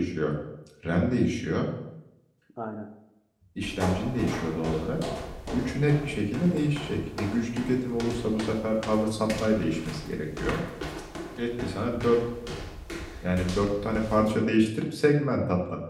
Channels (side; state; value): both; identical; correlation 1.00